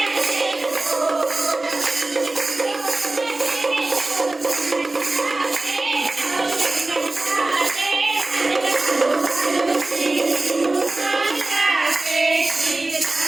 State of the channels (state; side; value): quieter; left; 3.0 dB